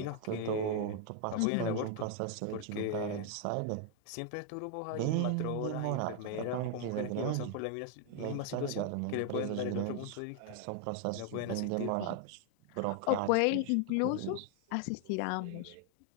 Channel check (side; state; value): both; different; correlation 0.00